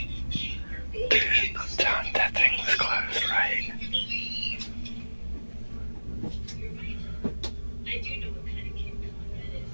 Dude, I'm telling you, that thing was closed, right?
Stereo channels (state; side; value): inverted; both; correlation -1.00